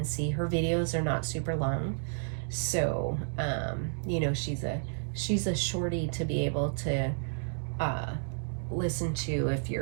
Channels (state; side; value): silent; left; digital silence